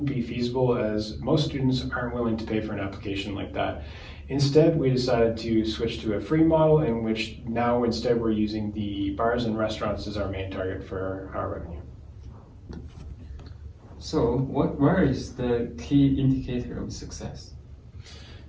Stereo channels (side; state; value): both; identical; correlation 1.00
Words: be feasible, as most students aren't willing to pay for an application like that. Instead, we decided to switch to a free model, in which now instead we're using the bars and restaurants as our main target for our revenue. So where is the key indicator of success?